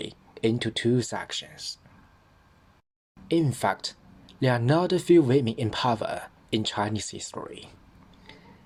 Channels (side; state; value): both; identical; correlation 1.00